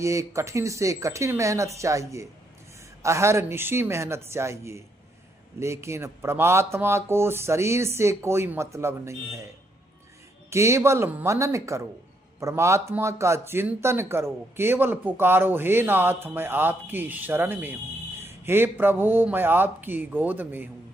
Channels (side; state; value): both; normal; correlation 0.75